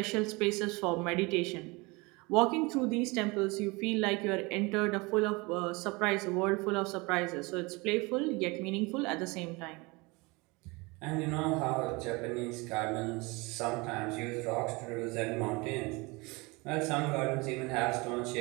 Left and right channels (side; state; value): left; quieter; 25.7 dB